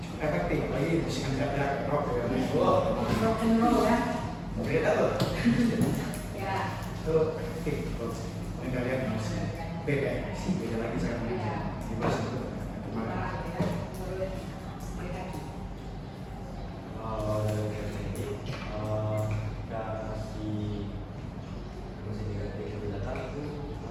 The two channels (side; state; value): both; identical; correlation 1.00